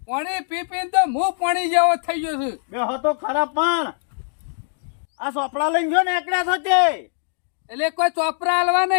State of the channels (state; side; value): silent; right; digital silence